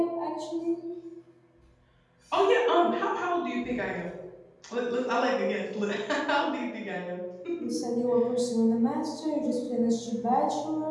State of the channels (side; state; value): both; identical; correlation 1.00